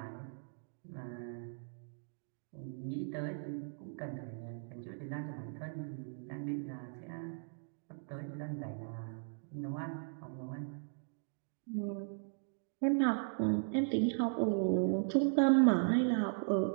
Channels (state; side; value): silent; left; digital silence